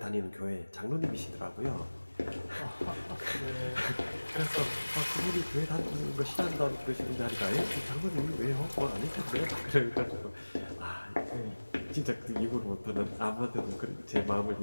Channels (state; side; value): inverted; both; correlation -1.00